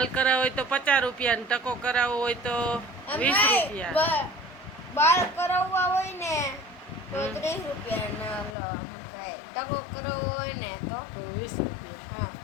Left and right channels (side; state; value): right; drops out; at 8.6 s